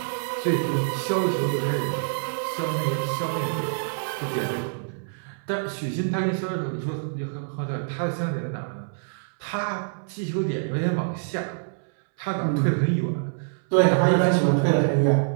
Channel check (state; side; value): silent; left; 61 dB below the other